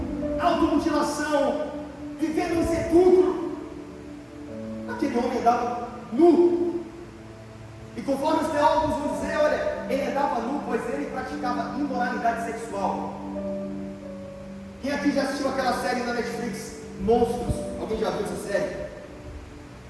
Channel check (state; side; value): identical; both; correlation 1.00